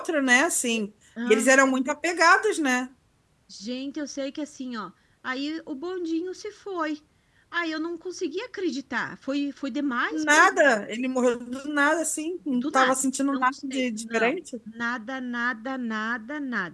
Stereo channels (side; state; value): both; identical; correlation 1.00